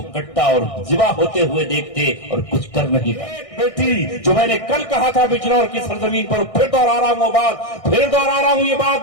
کٹا اور ذبح ہوتے ہوئے دیکھتے اور کچھ کر نہیں پاتے. بیٹی جو میں نے کل کہا تھا بجنور کی سرزمین پر، پھر دوہرا رہا ہوں وہ بات، پھر دوہرا رہا ہوں یہ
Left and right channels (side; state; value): right; late; 1.6 ms